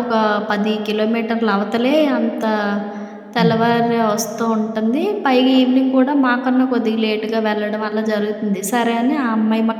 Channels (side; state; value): both; identical; correlation 1.00